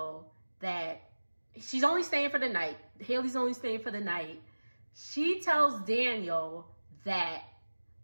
that she's only staying for the night. Haley's only staying for the night. She tells Daniel that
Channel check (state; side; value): inverted; both; correlation -1.00